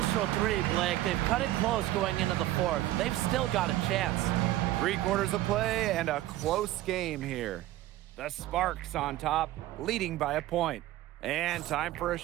3, Blake. They've cut it close going into the 4th. They've still got a chance. 3 quarters of play and a close game here. The Sparks on top, leading by a point. And time for a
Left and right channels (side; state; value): left; quieter; 15.4 dB